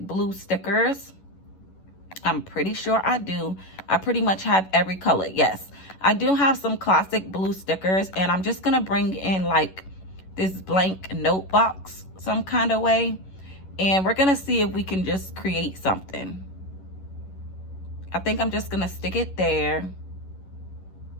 stickers. I'm pretty sure I do. I pretty much have every color. Yes, I do have some classic blue stickers, and I'm just gonna bring in like this blank note box some kind of way, and we're gonna see if we can just create something. I think I'm just gonna stick it there.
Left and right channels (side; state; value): right; late; 11 ms